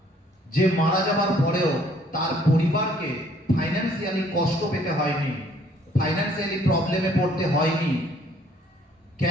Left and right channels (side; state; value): both; normal; correlation 0.61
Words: যে মারা যাবার পরেও তার পরিবারকে ফাইন্যান্সিয়ালি কষ্ট পেতে হয়নি, ফাইন্যান্সিয়ালি প্রবলেমে পড়তে হয়নি।